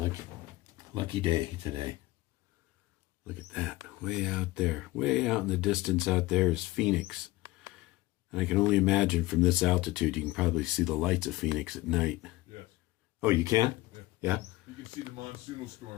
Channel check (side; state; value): right; quieter; 18.9 dB